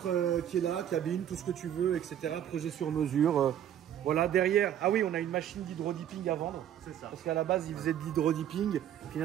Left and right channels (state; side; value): quieter; left; 10.5 dB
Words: qui est là, cabine, tout ce que tu veux, etc. Projet sur mesure. Voilà, derrière. Ah oui, on a une machine d'hydrodipping à vendre. C'est ça. Parce qu'à la base, il faisait de l'hydrodipping.